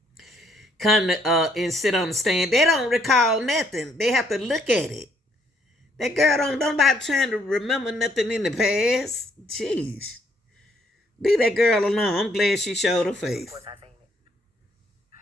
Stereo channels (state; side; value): normal; both; correlation 0.68